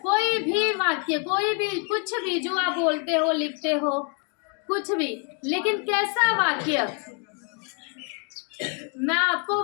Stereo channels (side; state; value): right; quieter; 38.1 dB